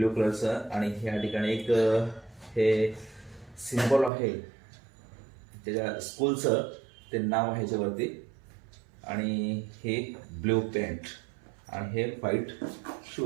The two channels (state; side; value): drops out; left; at 4.1 s